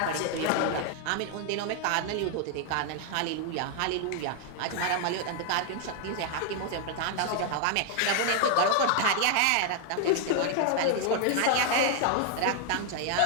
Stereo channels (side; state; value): both; different; correlation 0.00